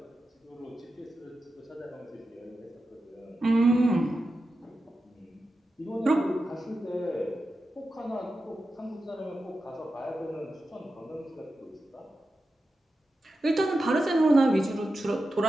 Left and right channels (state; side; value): normal; both; correlation 0.91